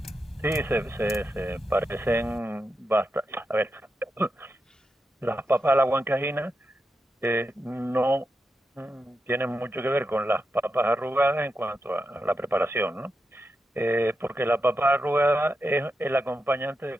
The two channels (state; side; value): normal; both; correlation 0.87